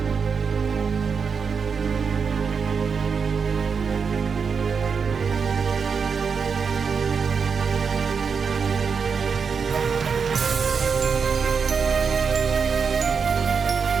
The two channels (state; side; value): quieter; left; 5.8 dB